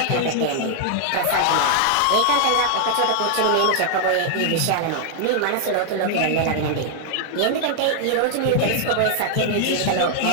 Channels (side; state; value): both; different; correlation 0.00